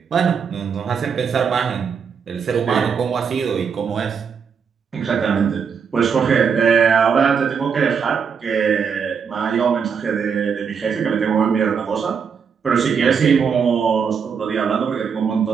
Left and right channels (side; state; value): left; quieter; 6.5 dB